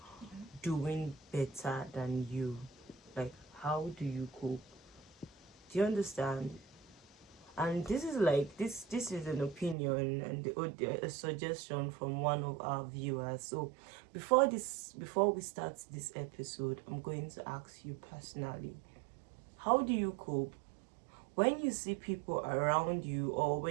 doing better than you. Like, how do you cope? Do you understand? And this is like this is an opinion and a suggestion from one of our viewers. So before we start this episode, I'm going to ask you personally, how do you cope when you see people around you, or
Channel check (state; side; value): drops out; left; at 9.8 s